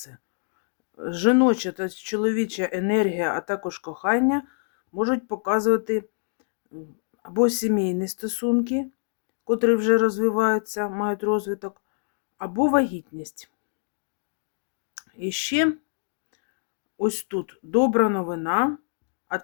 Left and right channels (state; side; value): silent; right; digital silence